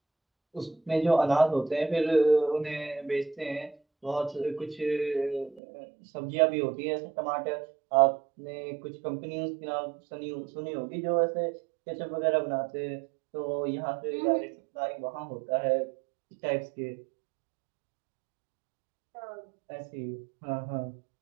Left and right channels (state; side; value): drops out; left; at 5.6 s